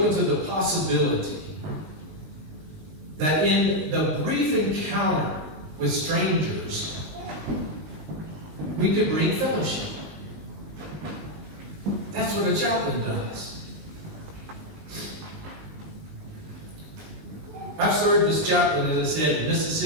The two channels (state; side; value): late; left; 19 ms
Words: to the possibility that in the brief encounter with strangers, we could bring fellowship. That's That's what a chaplain does. I've served as chaplain, as I said, in